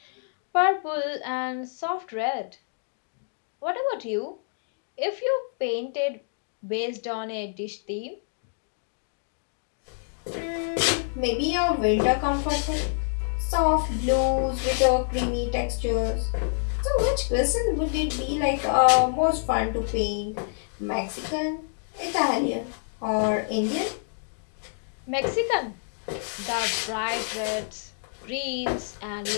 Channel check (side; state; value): right; silent; digital silence